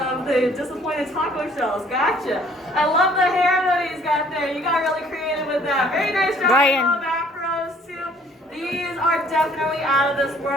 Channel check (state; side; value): normal; both; correlation 0.58